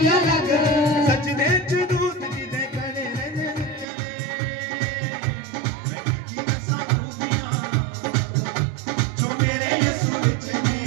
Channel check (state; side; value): drops out; left; at 3.9 s